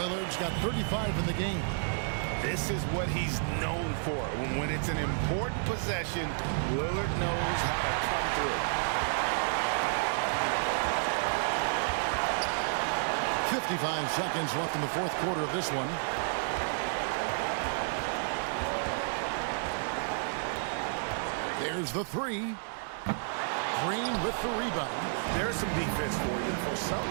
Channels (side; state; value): left; silent; digital silence